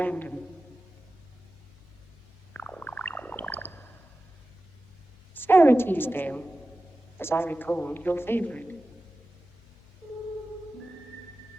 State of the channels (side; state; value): left; noise; hum, 26 dB below the sound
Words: Sarah Teasdale, as I recall, your favorite.